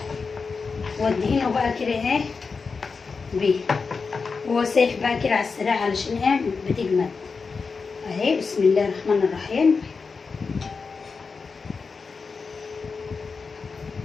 وادهنه بقى كده ايه بيه، وهو سايح بقى كده على السريع علشان ايه بتجمد اهي. بسم الله الرحمن الرحيم.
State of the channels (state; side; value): quieter; right; 4.8 dB